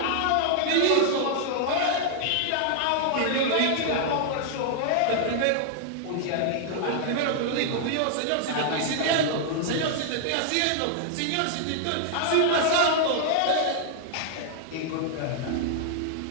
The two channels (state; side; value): different; both; correlation 0.00